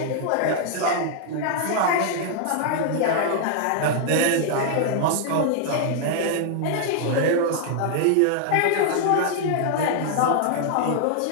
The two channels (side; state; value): both; different; correlation -0.01